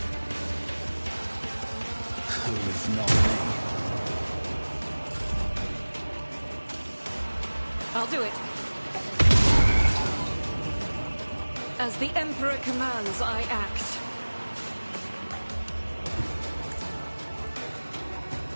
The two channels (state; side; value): inverted; both; correlation -1.00